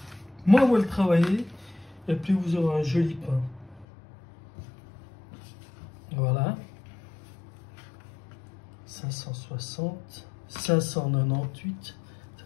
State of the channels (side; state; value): right; drops out; at 3.9 s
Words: Moins vous le travaillez, et plus vous aurez un joli pain. Voilà, 560, 598, ça